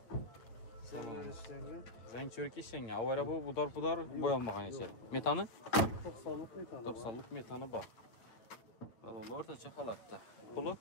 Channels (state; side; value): late; right; 8.5 ms